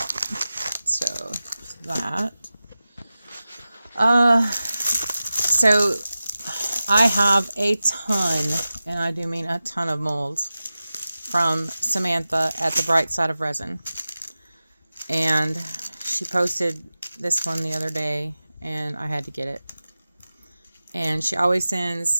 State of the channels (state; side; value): inverted; both; correlation -0.95